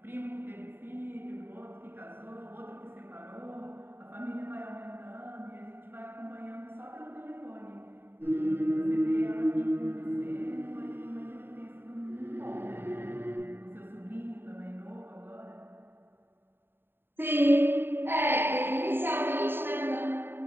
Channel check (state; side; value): late; left; 0.10 ms